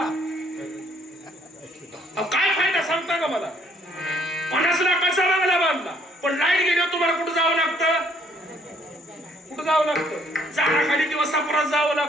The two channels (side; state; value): both; normal; correlation 0.64